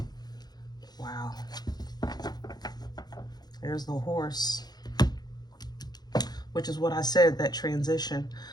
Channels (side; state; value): right; late; 0.20 ms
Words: Wow. There's the horse, which is what I said, that transition.